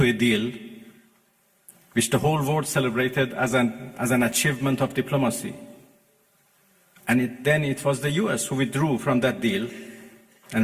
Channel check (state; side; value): identical; both; correlation 1.00